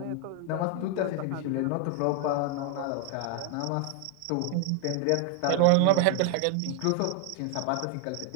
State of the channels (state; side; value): different; both; correlation 0.00